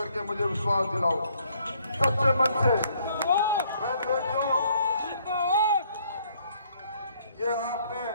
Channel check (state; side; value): inverted; both; correlation -0.66